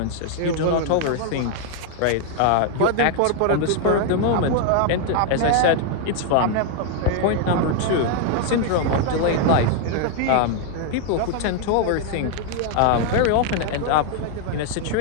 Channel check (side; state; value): both; different; correlation 0.00